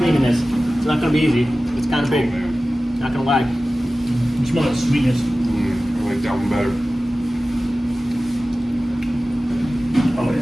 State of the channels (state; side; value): normal; both; correlation 0.96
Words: this. It's not going to be easy. It's kind of big. Not going to lie. You smell that sweetness. I like that one better. Oh